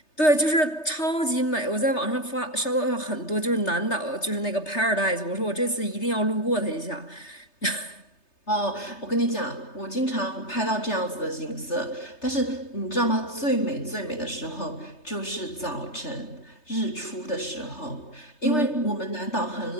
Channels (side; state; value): right; late; 3.3 ms